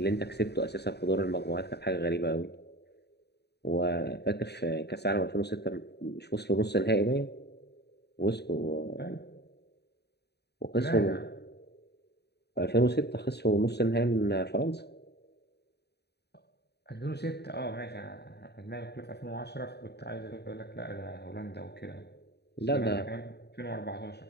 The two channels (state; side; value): late; right; 0.48 ms